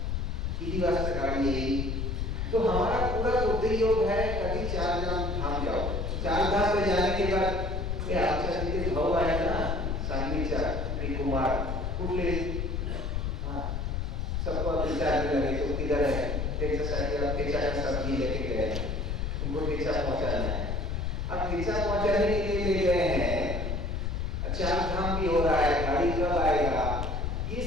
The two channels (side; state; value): left; noise; rumble, 1 dB below the sound